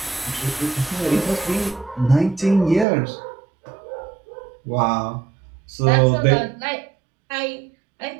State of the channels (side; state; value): left; drops out; at 2.9 s